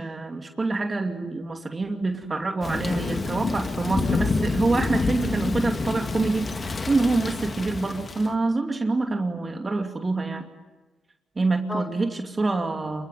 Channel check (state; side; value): normal; both; correlation 0.92